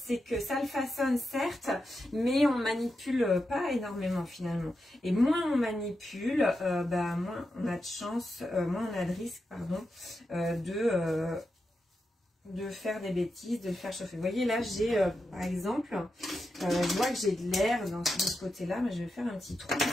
que ça le façonne certes, mais on manipule pas énormément finalement. Et moins on manipule, bah, moins on a de chance, moins on a de risque, pardon, de faire des bêtises, de le faire chauffer. Vous voyez là j'ai par exemple, je vois que j'ai de l'air de ce côté-là, mais je vais faire un petit trou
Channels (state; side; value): normal; both; correlation 0.87